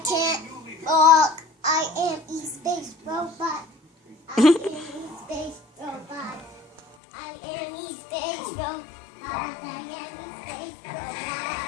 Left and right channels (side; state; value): right; drops out; at 6.8 s